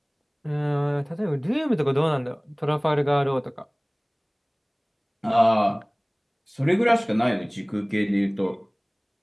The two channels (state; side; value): identical; both; correlation 1.00